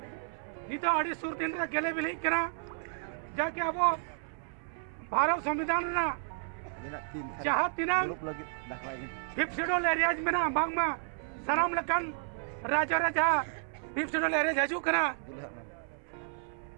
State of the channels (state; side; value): silent; left; 56 dB below the other